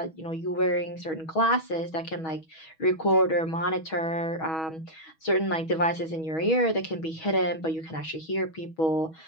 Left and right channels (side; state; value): right; late; 6.2 ms